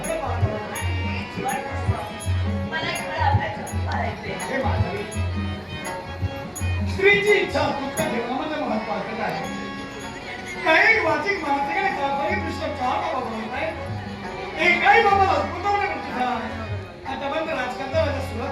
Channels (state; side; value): identical; both; correlation 1.00